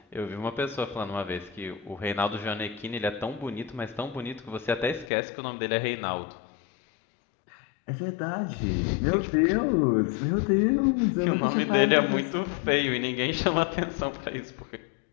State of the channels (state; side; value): drops out; right; at 5.1 s